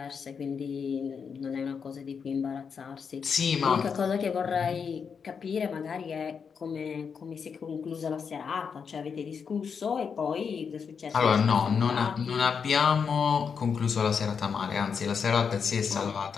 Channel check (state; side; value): quieter; right; 6.3 dB